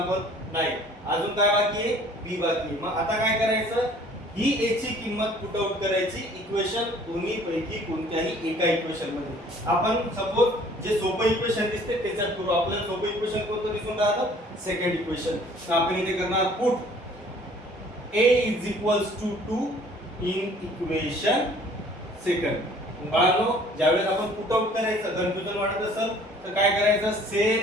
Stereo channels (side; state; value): both; normal; correlation 0.54